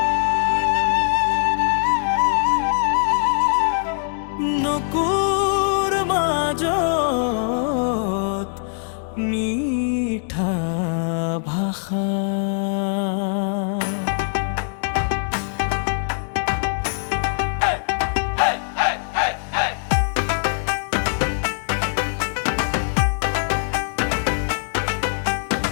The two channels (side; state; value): right; silent; digital silence